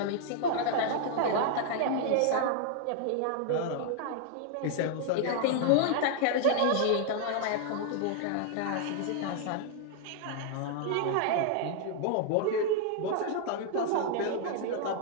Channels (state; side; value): different; both; correlation 0.00